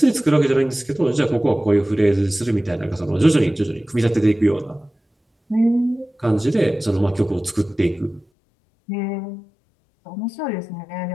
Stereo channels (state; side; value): drops out; right; at 8.2 s